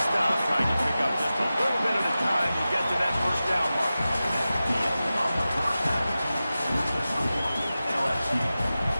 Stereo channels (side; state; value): both; inverted; correlation -0.94